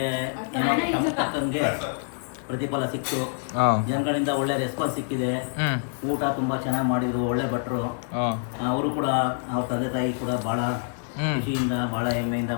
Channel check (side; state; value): right; silent; 61 dB below the other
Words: ಏನೋ ನಮ್ಗೆ ತಕ್ಕಂಗೆ ಪ್ರತಿಫಲ ಸಿಕ್ತು. ಜನಗಳಿಂದ ಒಳ್ಳೆ ರೆಸ್ಪಾನ್ಸ್ ಸಿಕ್ಕಿದೆ. ಊಟ ತುಂಬಾ ಚೆನ್ನಾಗಿ ಮಾಡಿದ್ರು, ಒಳ್ಳೆ ಭಟ್ರು. ಅವರು ಕೂಡ, ಅವ್ರ ತಂದೆ ತಾಯಿ ಕೂಡ ಬಹಳ ಖುಷಿಯಿಂದ, ಬಹಳ ಹೆಮ್ಮೆಯಿಂದ,